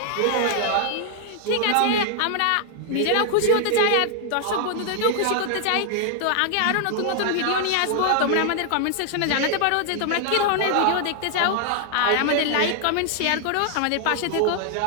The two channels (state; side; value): different; both; correlation 0.00